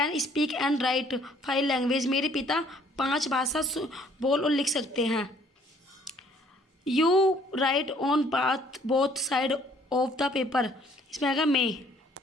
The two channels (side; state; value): both; normal; correlation 0.60